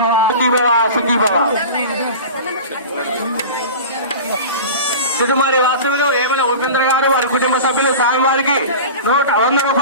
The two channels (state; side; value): inverted; both; correlation -0.33